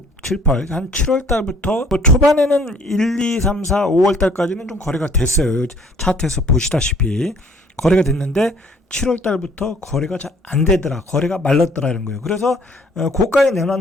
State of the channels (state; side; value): normal; both; correlation 0.57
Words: 한 7월 달부터 초반에는 1, 2, 3, 4, 5월 달까지는 좀 거래가 됐어요. 차트에서 보시다시피. 거래가 됐는데 7월 달부터 거래가 잘 안 되더라. 거래가 말랐더라는 거예요. 그래서 고가에